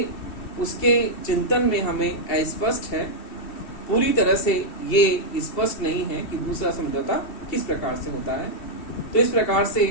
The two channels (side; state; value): right; late; 2.7 ms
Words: उसके चिंतन में हमें अस्पष्ट है। पूरी तरह से ये स्पष्ट नहीं है कि दूसरा समझौता किस प्रकार से होता है। तो इस प्रकार से